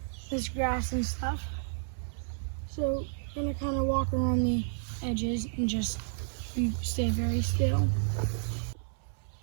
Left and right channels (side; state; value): left; silent; 57 dB below the other